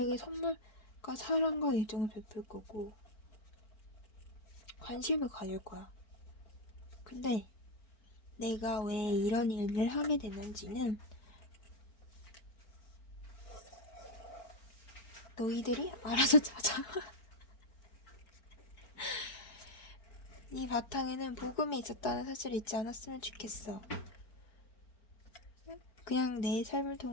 선물과 사랑과 애정을 베풀 거고, 관심을 가질 거야. 근데 내가 왜 이런 일을 하게 됐는지는 너희들이 알아서 찾아. 이 바탕에는 복음이 있었다는 사실을 잊지 않았으면 좋겠어. 그냥 내 삶을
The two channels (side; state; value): right; late; 4.7 ms